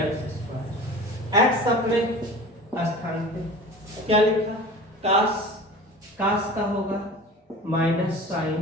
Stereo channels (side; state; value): both; normal; correlation 0.38